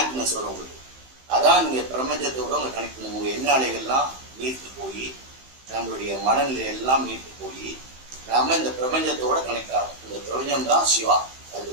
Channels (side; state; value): left; late; 15 ms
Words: வரும் உங்களுக்கு. அதான் நீங்கள் பிரபஞ்சத்தோட உங்களை கனெக்ட் பண்ணுங்க. உங்கள் எண்ண அலைகள்லாம் நீர்த்து போய் நம்மளுடைய மனநிலை எல்லாம் நீர்த்து போய் நாம இந்த பிரபஞ்சத்தோட கனெக்ட் ஆகும். இந்த பிரபஞ்சம் தான் சிவா,